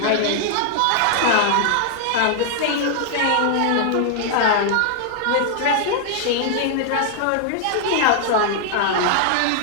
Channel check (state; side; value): different; both; correlation -0.01